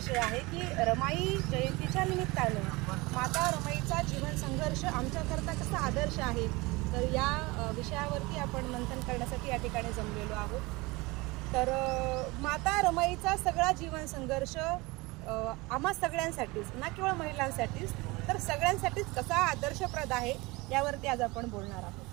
आहे की रमाई जयंतीच्या निमित्तानं माता रमाईचा जीवन संघर्ष आमच्याकरता कसा आदर्श आहे, तर या विषयावरती आपण मंथन करण्यासाठी या ठिकाणी जमलेलो आहोत. तर माता रमाईचा सगळा जीवन संघर्ष आम्हा सगळ्यांसाठीच, ना केवळ महिलांसाठीच तर सगळ्यांसाठीच कसा आदर्शप्रद आहे यावरती आज आपण बोलणार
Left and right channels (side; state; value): left; quieter; 23.4 dB